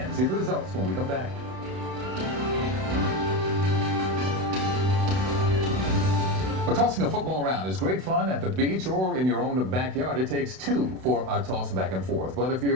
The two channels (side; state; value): left; late; 32 ms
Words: See the results when we come back. Well, tossing a football around is great fun at the beach or in your own backyard. It takes two for a toss back and forth. But if